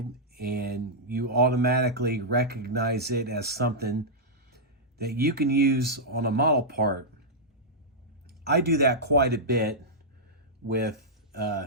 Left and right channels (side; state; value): both; normal; correlation -0.09